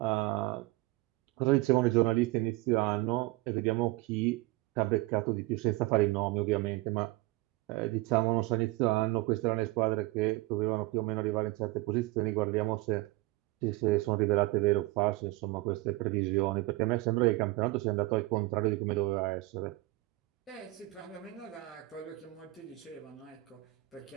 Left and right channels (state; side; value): quieter; left; 20.8 dB